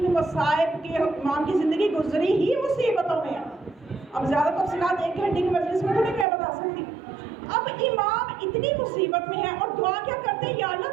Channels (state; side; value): drops out; left; at 6.2 s